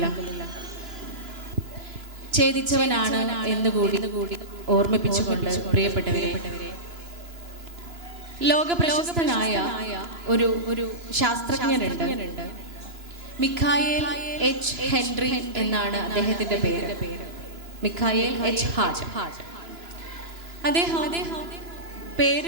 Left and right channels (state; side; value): late; left; 2.9 ms